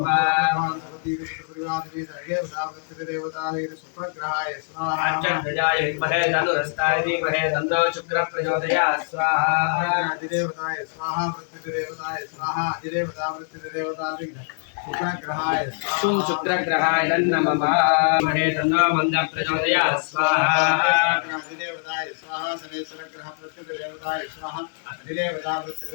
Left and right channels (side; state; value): right; silent; digital silence